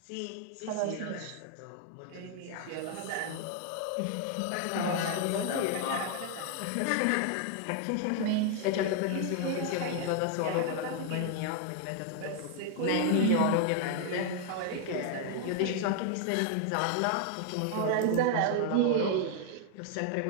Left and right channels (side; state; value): both; different; correlation 0.00